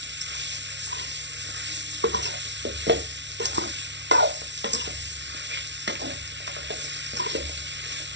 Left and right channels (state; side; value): late; left; 0.51 ms